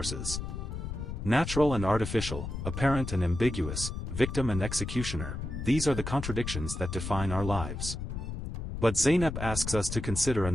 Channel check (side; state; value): left; noise; rumble, 6 dB below the sound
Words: Natural and artificial, apparent and ambiguous, victim and executioner, these are the contradictions that define our lives. But Zeynep asks us to consider